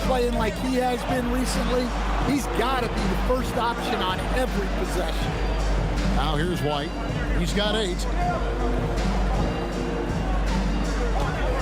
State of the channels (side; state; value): both; identical; correlation 1.00